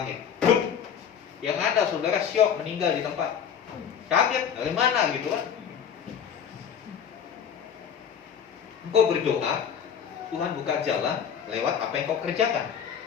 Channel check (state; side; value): quieter; right; 7.9 dB